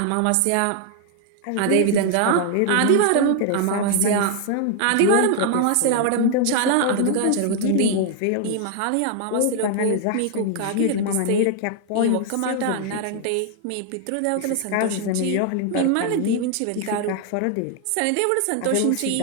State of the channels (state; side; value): different; both; correlation 0.00